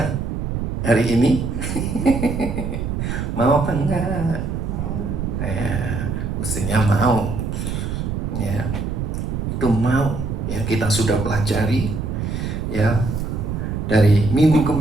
hari ini? Mau apa enggak? Ya, mestinya mau. Ya, itu mau. Ya, kita sudah pelajari. Ya, dari minggu ke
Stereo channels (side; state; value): right; noise; rumble, 2 dB below the sound